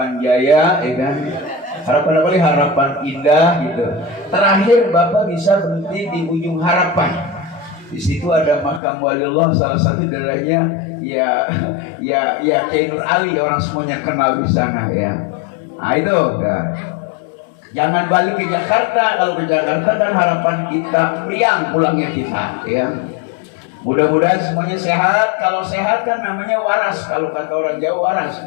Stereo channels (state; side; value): drops out; right; at 8.8 s